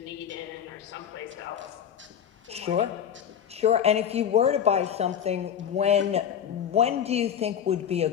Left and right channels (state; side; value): quieter; right; 8.8 dB